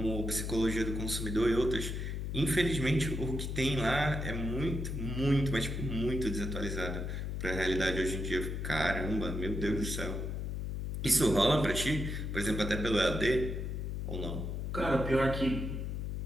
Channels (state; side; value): noise; left; hum, 3 dB below the sound